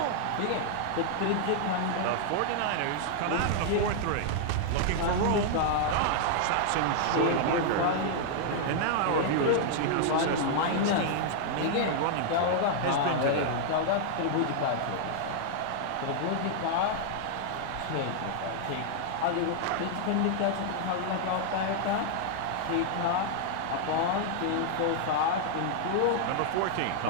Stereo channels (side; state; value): both; different; correlation -0.01